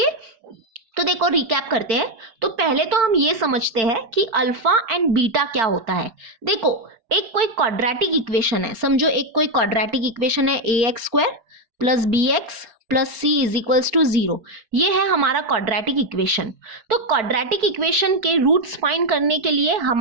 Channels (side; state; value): left; late; 4.7 ms